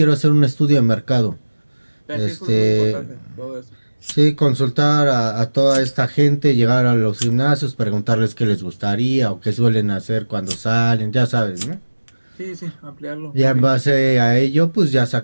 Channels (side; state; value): both; inverted; correlation -1.00